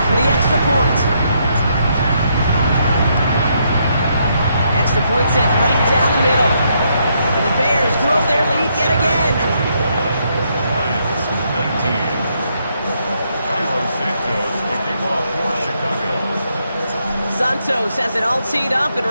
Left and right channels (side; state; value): both; inverted; correlation -0.76